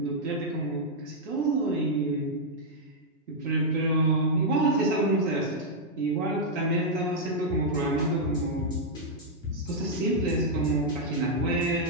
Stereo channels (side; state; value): both; normal; correlation -0.04